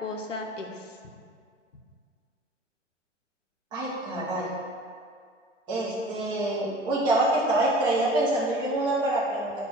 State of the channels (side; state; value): both; normal; correlation 0.44